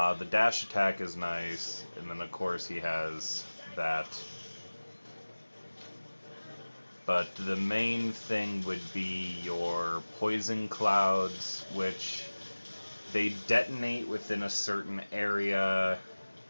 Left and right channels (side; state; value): both; inverted; correlation -1.00